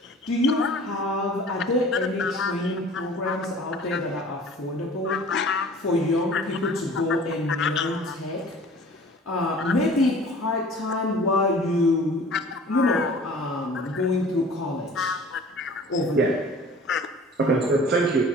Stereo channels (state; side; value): normal; both; correlation 0.46